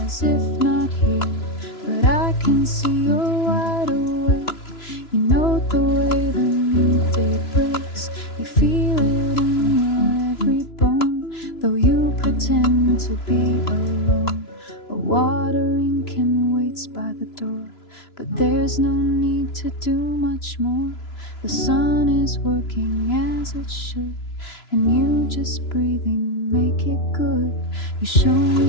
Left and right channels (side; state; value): right; late; 3.0 ms